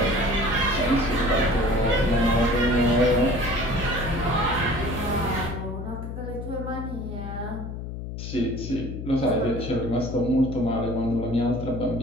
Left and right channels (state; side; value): noise; left; hum, 7 dB below the sound